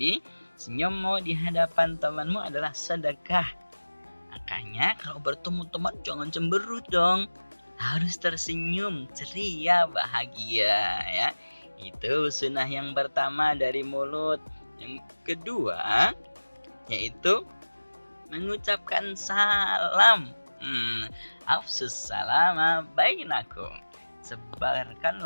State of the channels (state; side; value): inverted; both; correlation -1.00